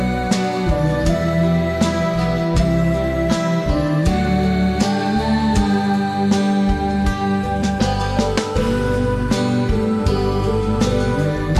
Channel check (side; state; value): both; identical; correlation 1.00